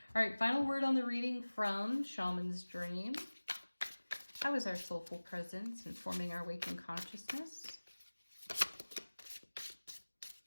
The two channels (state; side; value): inverted; both; correlation -1.00